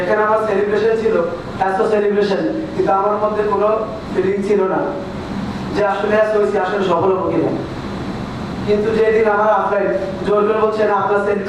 আমার সেলিব্রেশন ছিল, এত সেলিব্রেশন, কিন্তু আমার মধ্যে কোনো ফিলিং ছিল না যে আসলে আসলে সফল হবো কিনা। কিন্তু যেদিন আমার আফলাইন জোর করে বলছে না, আপনার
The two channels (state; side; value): identical; both; correlation 1.00